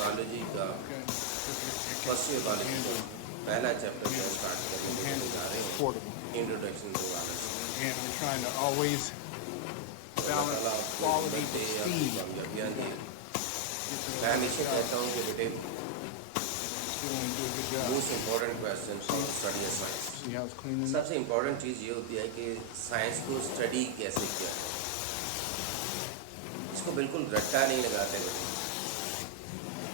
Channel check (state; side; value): different; both; correlation 0.00